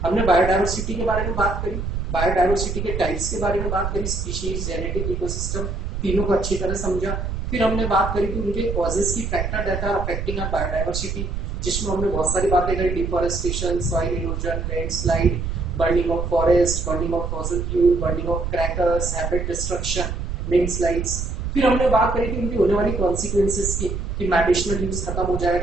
हमने बायोडायवर्सिटी के बारे में बात करी, बायोडायवर्सिटी के टाइप्स के बारे में बात करी, स्पीशीज, जेनेटिक, इकोसिस्टम, तीनों को अच्छी तरह समझा। फिर हमने बात करी कि उनके कॉजेस की factor that are affecting our biodiversity, जिसमें हमने बहुत सारी बातें करी, deforestation, soil erosion, landslide, burning of forest, burning of fossil fuel, burning of crackers, habit destruction, landslides. फिर हमने बात करी थी उनकी होने वाली कॉन्सिक्वेंसेस की, कि मेडिसिनल यूज खत्म हो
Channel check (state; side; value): noise; right; rumble, 3 dB below the sound